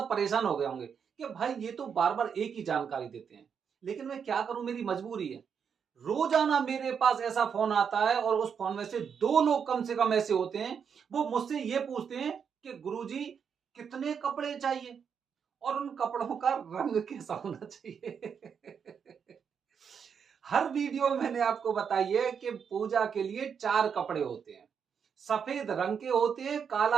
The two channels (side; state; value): left; quieter; 7.0 dB